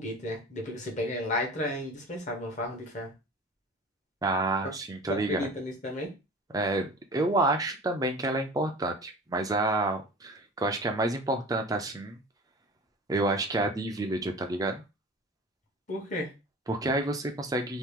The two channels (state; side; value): normal; both; correlation 0.39